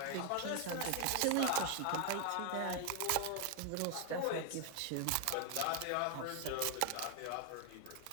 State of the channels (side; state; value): both; different; correlation 0.00